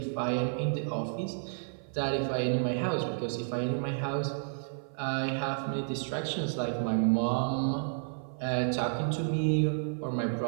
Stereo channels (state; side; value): silent; left; 57 dB below the other